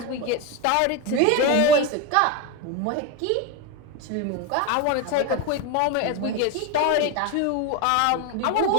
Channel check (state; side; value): different; both; correlation 0.03